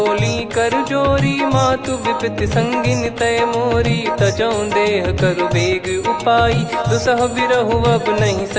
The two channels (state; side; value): identical; both; correlation 1.00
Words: कर जोरी, मातु विपत्ति संगिन तय मोरी। तजौ देह करु बेग उपाई, दुसह बिरहु अब नहीं